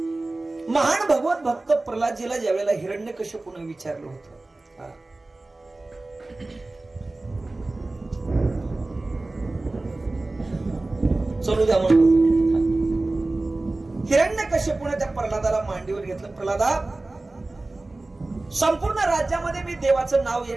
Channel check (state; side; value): quieter; left; 3.0 dB